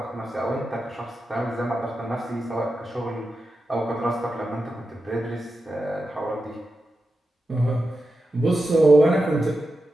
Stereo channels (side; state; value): both; normal; correlation 0.90